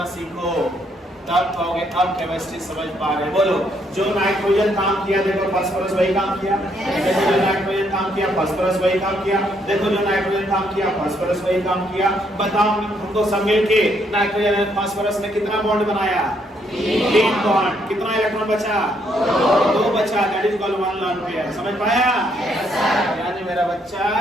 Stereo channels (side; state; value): both; normal; correlation 0.72